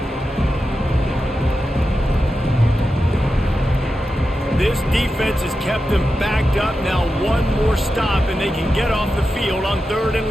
This defense has kept them backed up. Now one more stop and they can get off the field on 3rd and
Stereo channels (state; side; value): normal; both; correlation 0.90